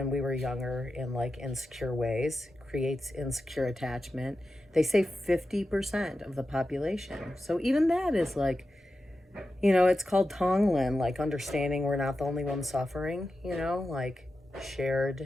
we were younger in insecure ways, creates insecure attachment. They say 50% of the population. So even that is it's called Tonglen, understanding we're not the only one suffering,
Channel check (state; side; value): normal; both; correlation 0.91